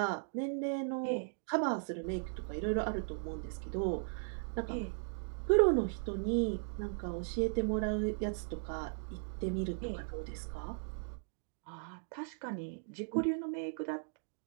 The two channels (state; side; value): silent; left; digital silence